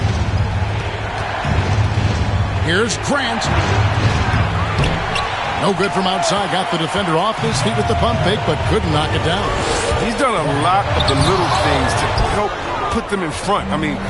Here's Grant. No good from outside. Got the defender off his feet with the pump fake, but couldn't knock it down. He's done a lot of the little things to help put them in front. I mean,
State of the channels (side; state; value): both; identical; correlation 1.00